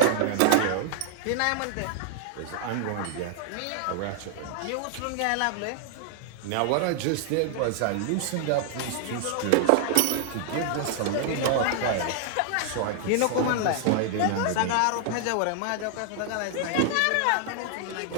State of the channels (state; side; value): different; both; correlation 0.00